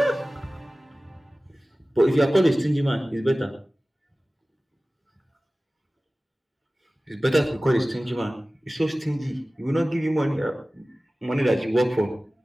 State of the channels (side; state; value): both; normal; correlation 0.97